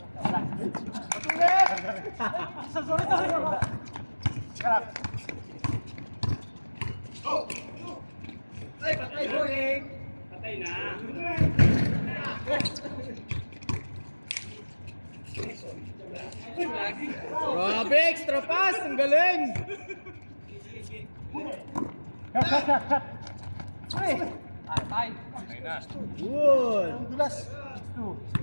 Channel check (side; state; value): both; inverted; correlation -1.00